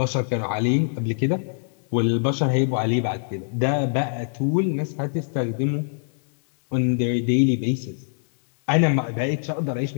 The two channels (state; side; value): silent; right; digital silence